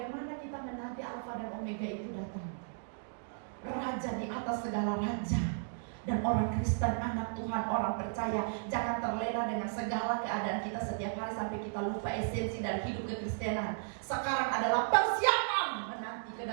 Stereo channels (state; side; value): silent; left; digital silence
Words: kita menanti Alfa dan Omega itu datang? Raja di atas segala raja. Dan orang Kristen, anak Tuhan, orang percaya, jangan terlena dengan segala keadaan kita setiap hari sampai kita lupa esensi dari hidup kekristenan. Sekarang adalah persiapan menanti